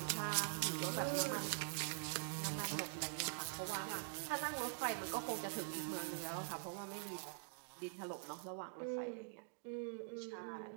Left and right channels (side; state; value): left; silent; digital silence